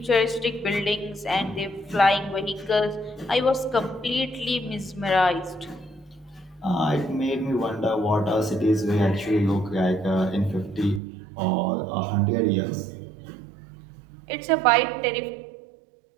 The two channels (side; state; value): left; drops out; at 11.0 s